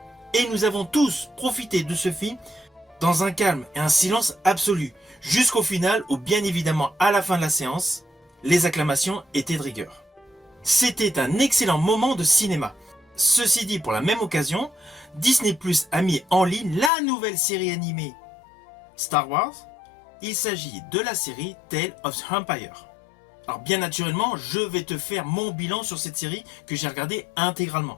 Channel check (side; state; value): right; drops out; at 16.9 s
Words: Et nous avons tous profité de ce film dans un calme et un silence absolu, jusqu'au final où bien évidemment à la fin de la séance, les acclamations étaient de rigueur. C'était un excellent moment de cinéma. Ceci dit, pour la même occasion, Disney Plus a mis en ligne la nouvelle série animée Star Wars. Il s'agit de la série Tales of the Empire. Alors bien naturellement, je vais te faire mon bilan sur cette série que j'ai regardée